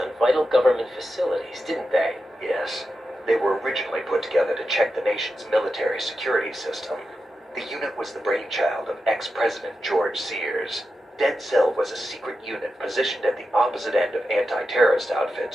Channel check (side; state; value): both; normal; correlation 0.90